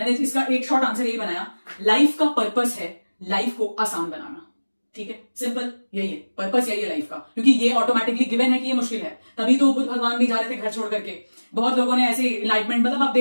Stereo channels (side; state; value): both; inverted; correlation -1.00